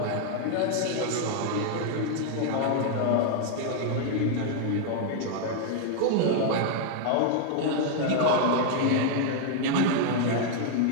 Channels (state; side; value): different; both; correlation 0.00